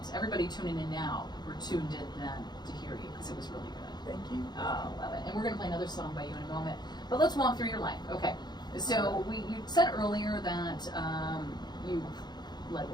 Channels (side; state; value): right; late; 0.20 ms